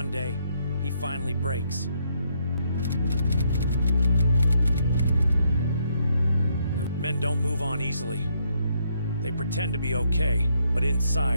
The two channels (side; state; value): both; inverted; correlation -0.74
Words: day he finally breaks. Men don't move on easily. They pretend to be okay, but